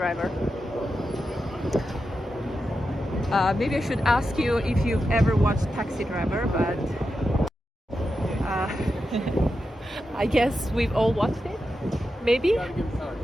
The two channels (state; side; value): normal; both; correlation 0.89